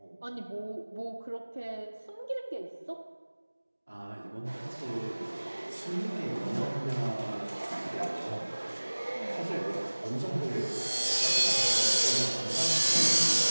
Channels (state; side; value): inverted; both; correlation -1.00